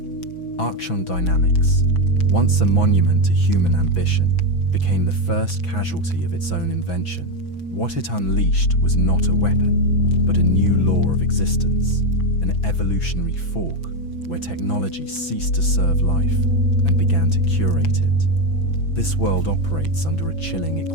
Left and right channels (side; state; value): right; late; 6.0 ms